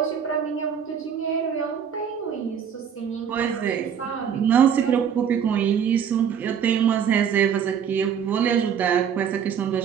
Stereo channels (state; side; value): quieter; left; 7.9 dB